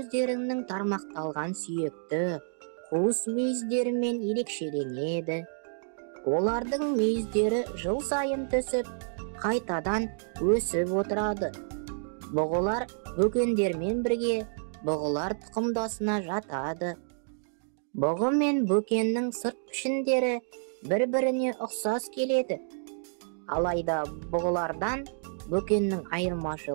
тармақталған сүйекті қуыс мүйіздерімен ерекшеленеді. Олардың мүйіздері жыл сайын түсіп, қайтадан өсіп отырады. Бұғылар бөкендермен бірге бұғылар тұқымдасына жатады. Бұғы мен бөкеннің сырт пішіндері бір-біріне ұқсас келеді. Алайда бұғылардан бөкеннің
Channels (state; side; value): silent; left; digital silence